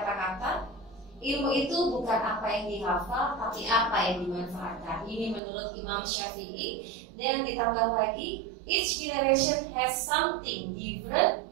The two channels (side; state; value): left; drops out; at 5.4 s